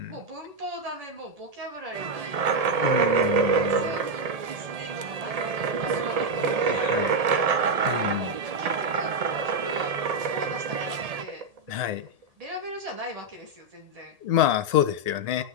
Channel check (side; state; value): left; late; 1.8 ms